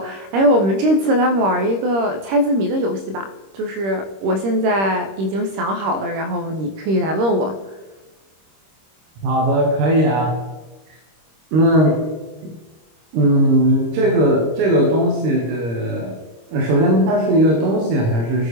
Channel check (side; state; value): left; late; 26 ms